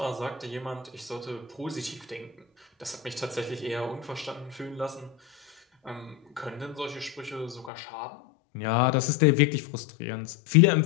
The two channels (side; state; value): right; drops out; at 7.7 s